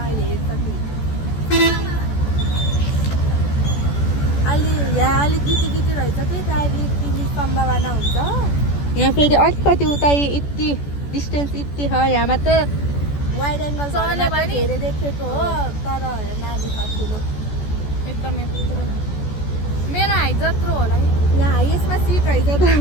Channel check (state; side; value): late; right; 14 ms